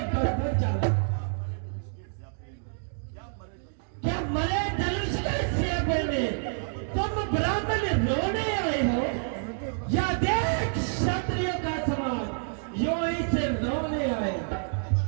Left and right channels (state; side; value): silent; left; digital silence